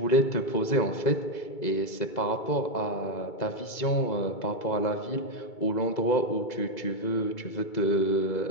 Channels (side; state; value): right; late; 2.2 ms